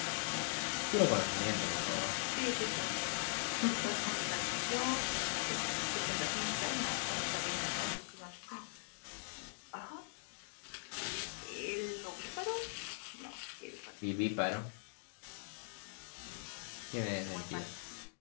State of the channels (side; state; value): right; silent; digital silence